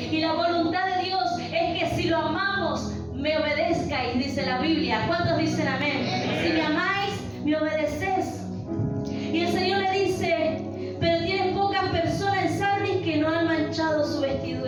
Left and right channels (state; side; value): noise; left; rumble, 28 dB below the sound